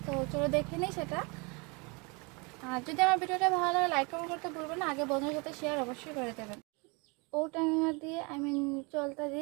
তো চলো দেখে নিই সেটা। আর যদি আমার ভিডিওটা ভালো লাগে লাইক কমেন্ট করতে ভুলবেন না, আগে বন্ধুদের সাথে শেয়ার অবশ্যই করে দেবেন। outenga দিয়ে চলতা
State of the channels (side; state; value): left; quieter; 30.1 dB